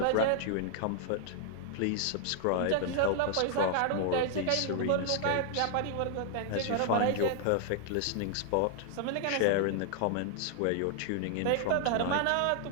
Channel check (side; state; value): both; different; correlation 0.00